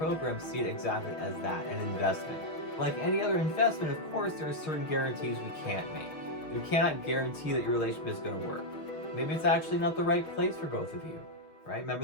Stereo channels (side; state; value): right; late; 6.3 ms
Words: see it exactly as that, an investment. Like any other investment, of course, there are certain guarantees we can't make. We cannot guarantee that your relationship is going to work. Maybe it's actually not the right place for both of you, right?